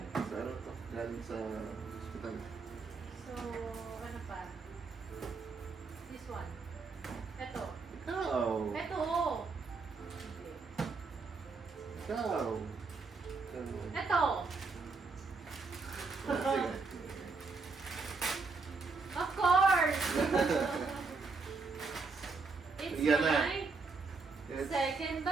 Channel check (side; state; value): left; quieter; 4.4 dB